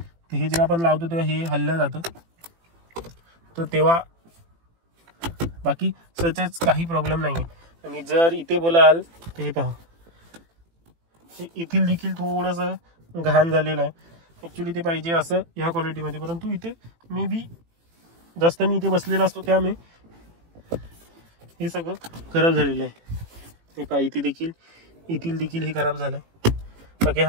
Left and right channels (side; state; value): left; late; 18 ms